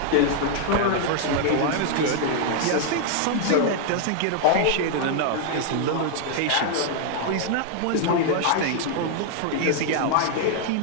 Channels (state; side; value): different; both; correlation 0.00